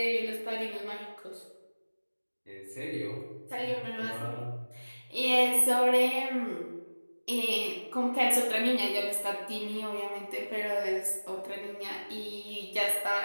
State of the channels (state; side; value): inverted; both; correlation -1.00